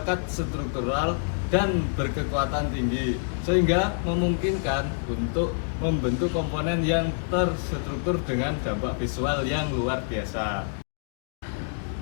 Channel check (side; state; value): right; silent; digital silence